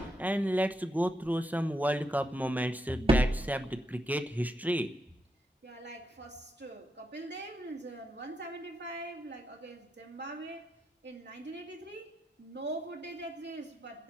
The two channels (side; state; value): both; normal; correlation 0.83